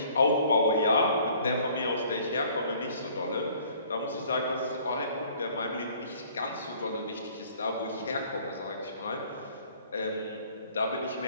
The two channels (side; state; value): both; inverted; correlation -0.56